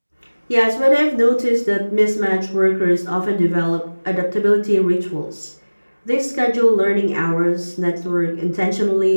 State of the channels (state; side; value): inverted; both; correlation -1.00